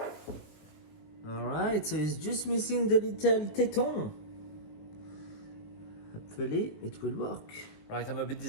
Alright, so it's just missing the little téton. Hopefully it will work. Right, I'm a bit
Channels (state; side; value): late; right; 19 ms